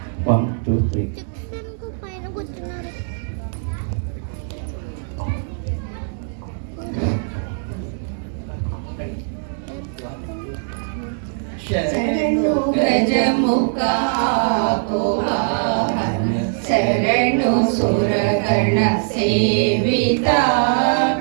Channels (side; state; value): left; silent; 65 dB below the other